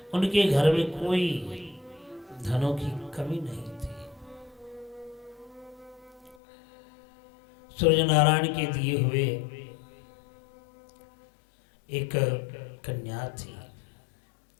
उनके घर में कोई धनों की कमी नहीं थी। सूर्य नारायण के दिए हुए एक कन्या थी।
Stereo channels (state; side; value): drops out; right; at 6.4 s